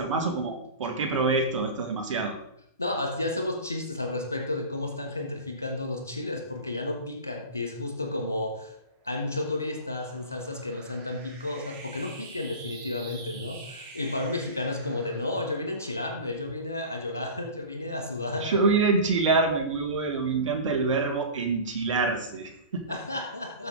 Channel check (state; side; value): inverted; both; correlation -0.35